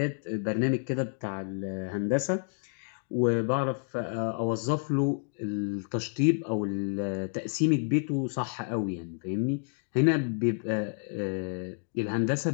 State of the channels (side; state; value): right; silent; digital silence